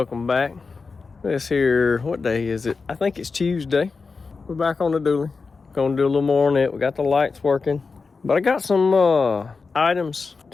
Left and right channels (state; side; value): quieter; right; 4.5 dB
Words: back. This here, what day is it? I think it's Tuesday. We're back on the dually. Gonna do a little more on it. We got the lights working. But I got some items